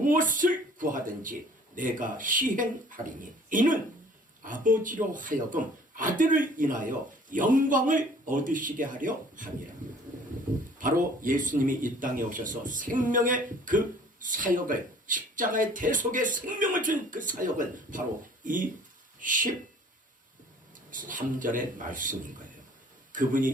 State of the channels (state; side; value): normal; both; correlation 0.52